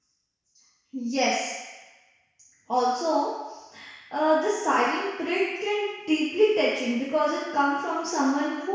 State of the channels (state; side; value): identical; both; correlation 1.00